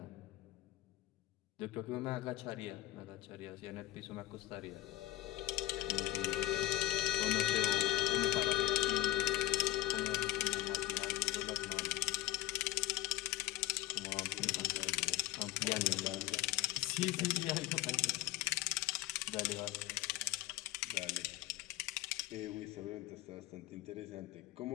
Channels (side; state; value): right; quieter; 15.6 dB